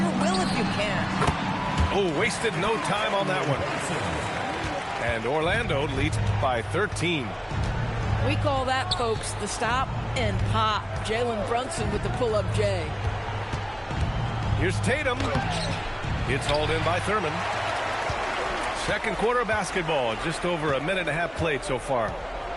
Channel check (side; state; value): both; identical; correlation 1.00